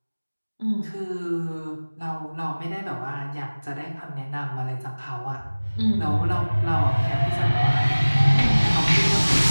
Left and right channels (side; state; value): both; inverted; correlation -1.00